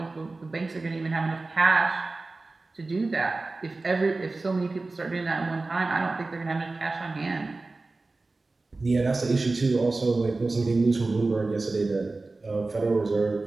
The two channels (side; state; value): left; quieter; 3.4 dB